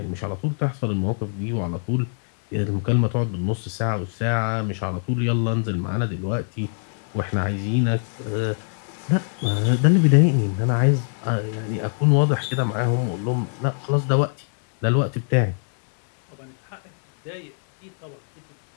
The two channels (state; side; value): silent; right; 63 dB below the other